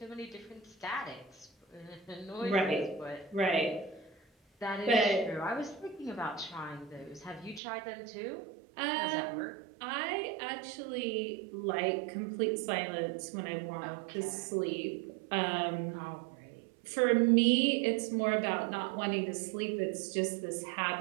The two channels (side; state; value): left; drops out; at 7.6 s